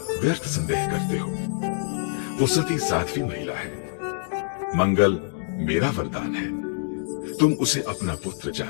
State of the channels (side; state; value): right; silent; digital silence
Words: व्यर्थ संदेह करते हो। वो सती साध्वी महिला है। मंगल मेरा वरदान है। तुम उसे अपना पुत्र